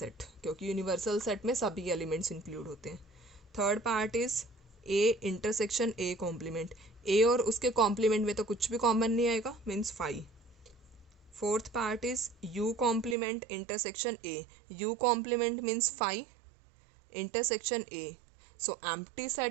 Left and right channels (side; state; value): left; drops out; at 13.2 s